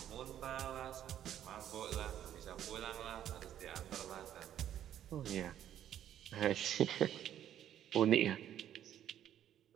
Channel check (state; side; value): quieter; left; 10.9 dB